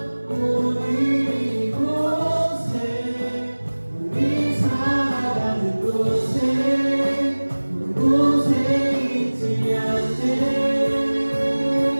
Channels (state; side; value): inverted; both; correlation -1.00